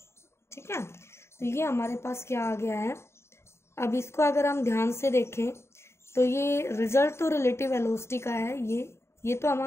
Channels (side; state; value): right; late; 0.13 ms